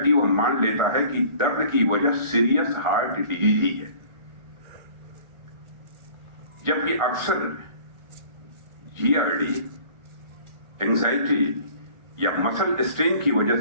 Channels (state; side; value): late; left; 1.4 ms